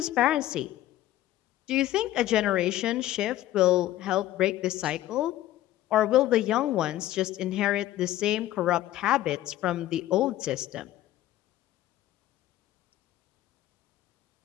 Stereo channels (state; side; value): quieter; right; 14.3 dB